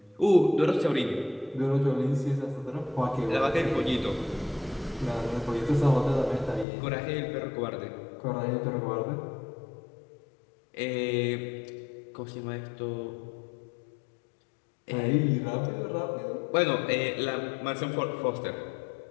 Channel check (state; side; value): drops out; right; at 6.7 s